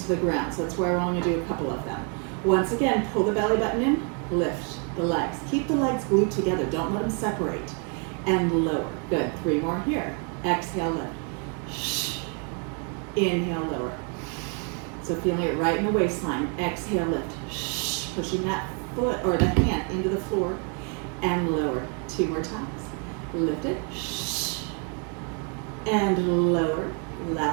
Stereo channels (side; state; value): left; quieter; 37.2 dB